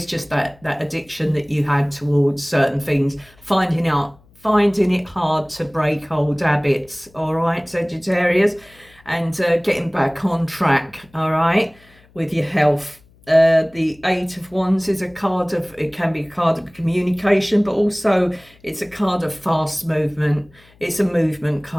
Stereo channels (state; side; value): noise; left; hum, 29 dB below the sound